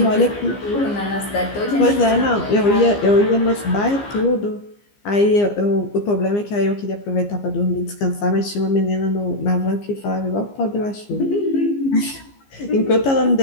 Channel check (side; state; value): right; late; 15 ms